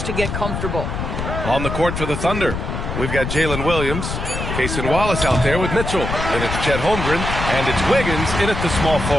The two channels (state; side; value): noise; left; rumble, 4 dB below the sound